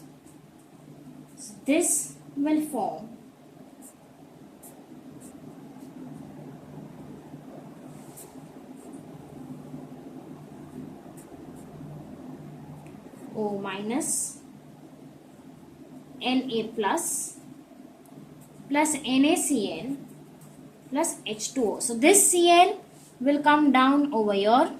So this will form O minus Na plus NaCl plus H2O. So this Cl will come down over here.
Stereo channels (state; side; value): identical; both; correlation 1.00